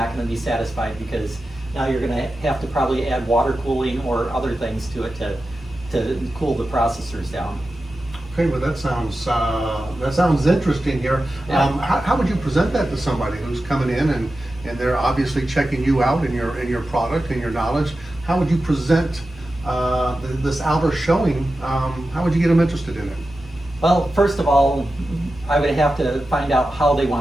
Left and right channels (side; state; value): both; normal; correlation 0.92